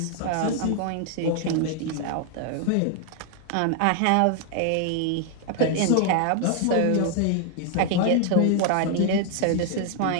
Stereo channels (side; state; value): both; different; correlation 0.00